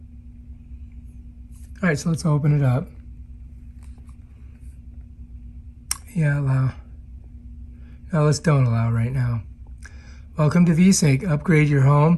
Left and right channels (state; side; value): identical; both; correlation 1.00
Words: All right, so let's open it up. Yeah, allow. No, let's don't allow right now. Welcome to VeSync. Upgrade your home,